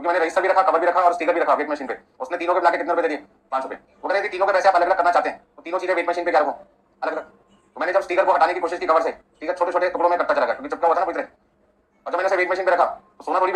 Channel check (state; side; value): identical; both; correlation 1.00